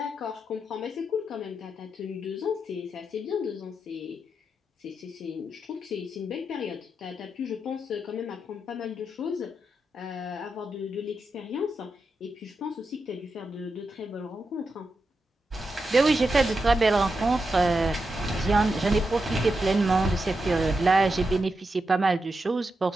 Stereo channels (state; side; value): normal; both; correlation 0.87